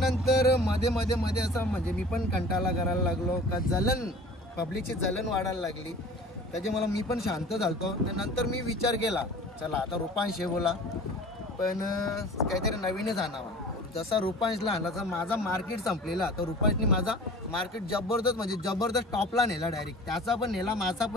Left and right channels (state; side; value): normal; both; correlation 0.43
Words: मध्ये असं म्हणजे मी पण कंटाळा करायला लागलो का पब्लिकची जलन वाढायला लागली. त्याचे मला मी पण शांत झालतो. त्यानंतर मी विचार केला, चला आता रुपांश हे बोला पण काहीतरी नवीनच आणावा. जसा रुपांशला आणला तर माझा मार्केट संपलेला, तर रुपांशने माझा मार्केट जबरदस्त टॉपला नेला. डायरेक्ट त्याचा पण नेला, माझा